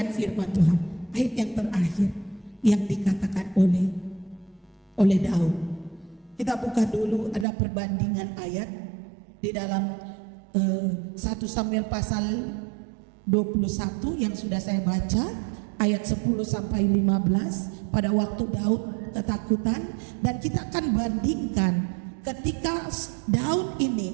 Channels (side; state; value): left; drops out; at 7.5 s